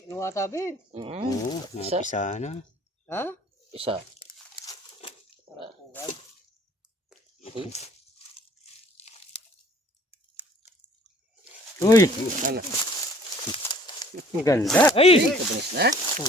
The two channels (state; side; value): normal; both; correlation 0.54